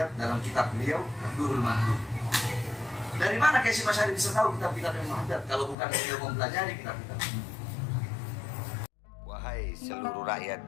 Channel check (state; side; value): drops out; right; at 5.8 s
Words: dalam kitab beliau Ad-Durrul Mahdud. Dari mana Hasyim Asy'ari bisa tahu kitab-kitab yang Haddad kalau bukan beliau mempelajari kitab-kitab? Wahai seluruh